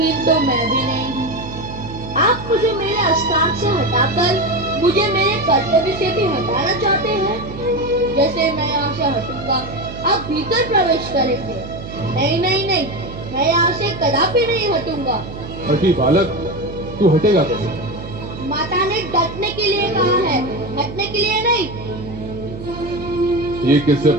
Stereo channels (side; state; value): right; noise; hum, 11 dB below the sound